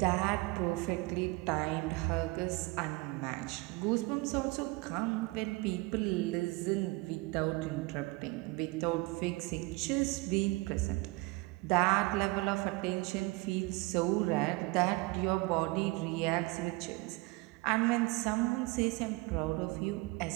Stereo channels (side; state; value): left; quieter; 24.0 dB